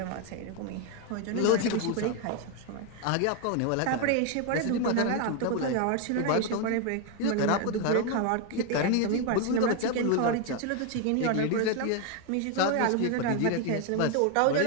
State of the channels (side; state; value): both; different; correlation 0.01